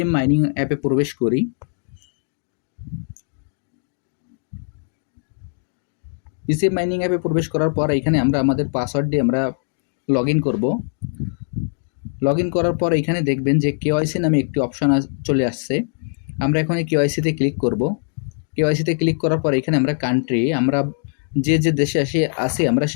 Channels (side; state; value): right; silent; digital silence